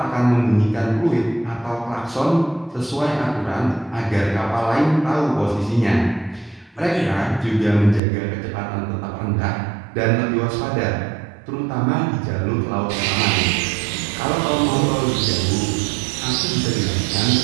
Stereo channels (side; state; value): left; drops out; at 8.0 s